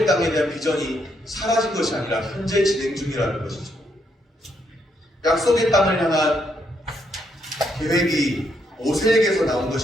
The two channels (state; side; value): normal; both; correlation 0.76